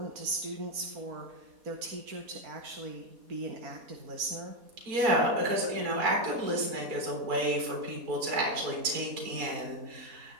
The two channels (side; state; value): left; late; 4.2 ms